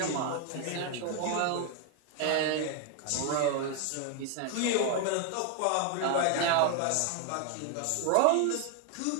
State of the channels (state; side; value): different; both; correlation 0.00